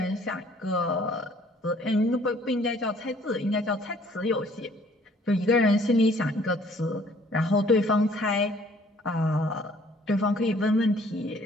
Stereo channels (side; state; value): both; normal; correlation 0.58